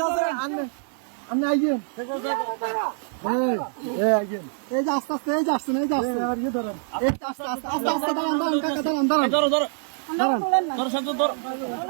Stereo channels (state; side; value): silent; left; digital silence